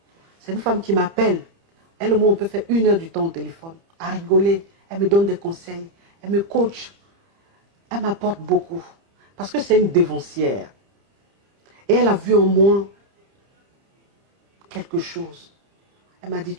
C'est une femme qui m'appelle. Elle et moi, on peut faire 1 heure du temps au téléphone, à rigoler. Elle me donne des conseils, elle me coach. Elle m'apporte beaucoup. Parce que c'est une dévancière. Et elle a vu en moi quelque chose. Elle m'a dit,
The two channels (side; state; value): left; late; 30 ms